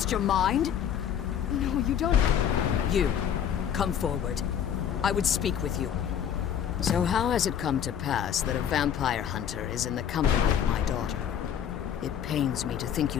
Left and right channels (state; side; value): quieter; right; 9.0 dB